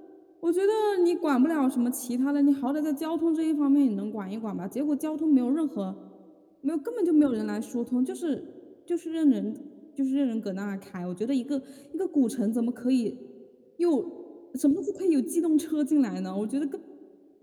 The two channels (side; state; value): both; identical; correlation 1.00